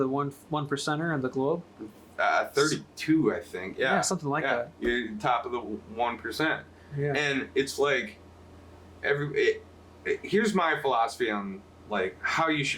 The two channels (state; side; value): identical; both; correlation 1.00